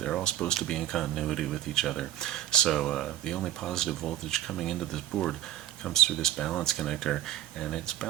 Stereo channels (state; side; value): quieter; left; 12.8 dB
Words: all supposed to be in continuity with each other. So the only positive voltage coming into this board comes through this balance connector, and its